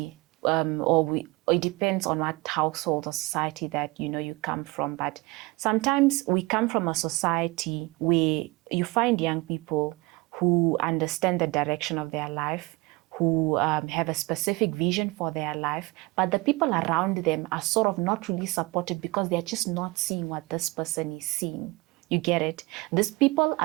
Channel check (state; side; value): quieter; left; 23.6 dB